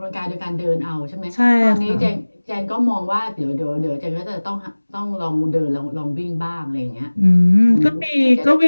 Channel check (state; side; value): inverted; both; correlation -1.00